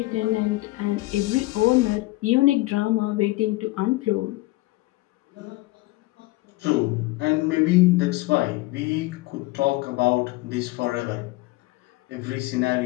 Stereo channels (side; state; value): right; quieter; 20.2 dB